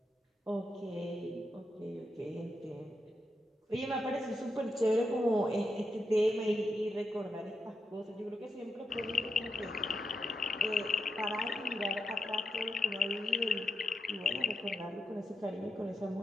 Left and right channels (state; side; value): normal; both; correlation 0.84